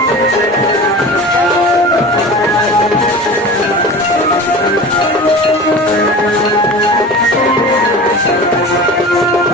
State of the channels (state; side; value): normal; both; correlation 0.35